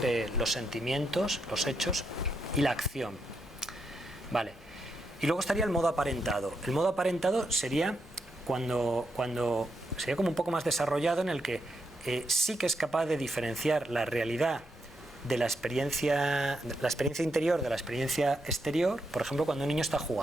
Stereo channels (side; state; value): both; normal; correlation 0.82